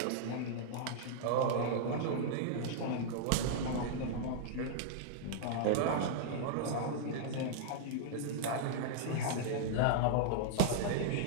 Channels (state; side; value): different; both; correlation -0.01